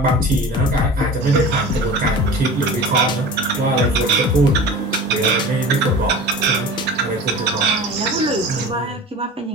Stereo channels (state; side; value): normal; both; correlation 0.36